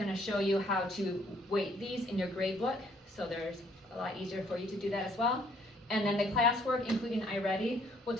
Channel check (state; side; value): normal; both; correlation 0.64